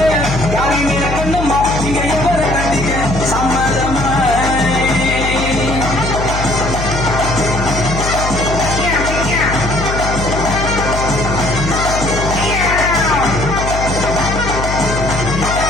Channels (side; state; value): left; noise; hum, 4 dB below the sound